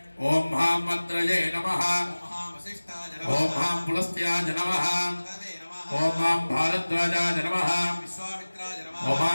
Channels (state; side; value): inverted; both; correlation -1.00